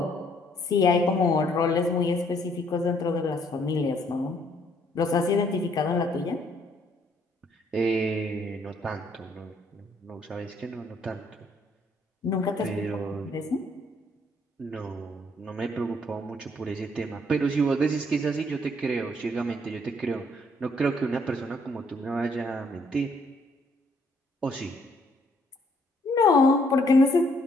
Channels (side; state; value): both; normal; correlation 0.67